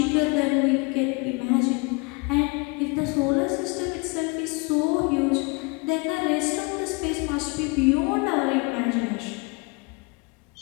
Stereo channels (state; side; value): quieter; right; 28.9 dB